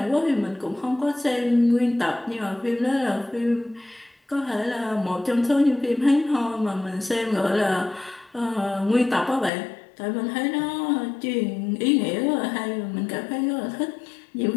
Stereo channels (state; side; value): drops out; right; at 9.5 s